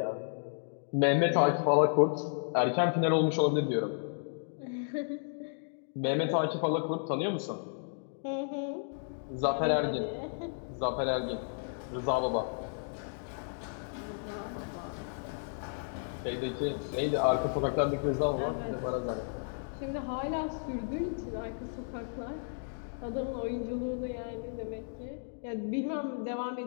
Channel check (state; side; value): silent; right; digital silence